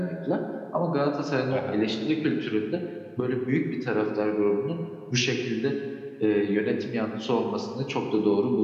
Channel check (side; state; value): both; identical; correlation 1.00